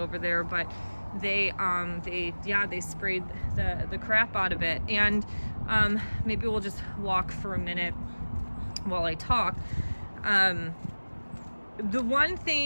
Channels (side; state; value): both; inverted; correlation -1.00